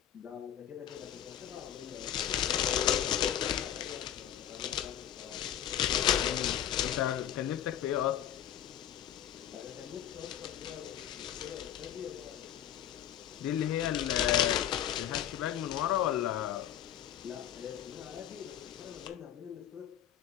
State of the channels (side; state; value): right; quieter; 10.7 dB